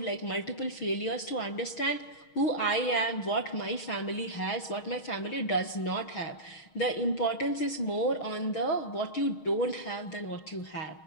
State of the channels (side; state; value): right; late; 6.4 ms